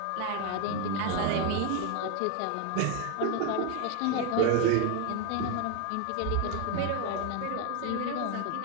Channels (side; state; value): both; different; correlation 0.01